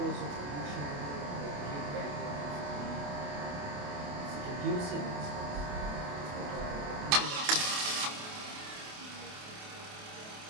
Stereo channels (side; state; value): left; late; 28 ms